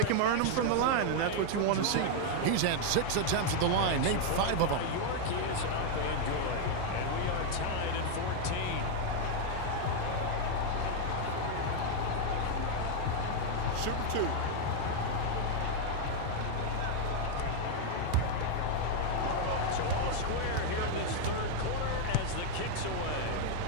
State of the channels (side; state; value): both; different; correlation 0.00